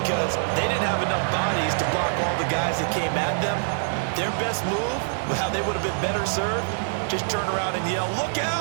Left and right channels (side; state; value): left; silent; 62 dB below the other